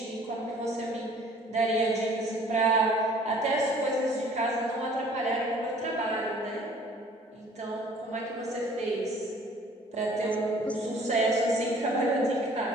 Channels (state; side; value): normal; both; correlation 0.53